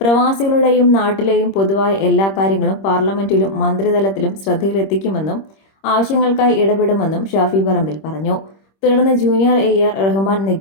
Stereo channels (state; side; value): late; right; 26 ms